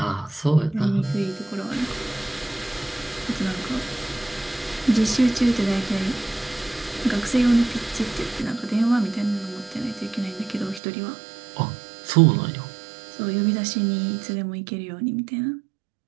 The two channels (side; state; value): left; drops out; at 10.8 s